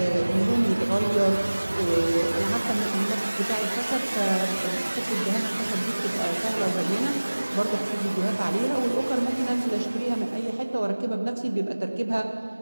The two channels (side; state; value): both; inverted; correlation -1.00